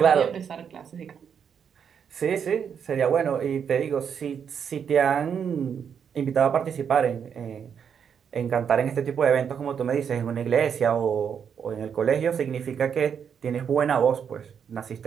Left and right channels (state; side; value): quieter; left; 7.5 dB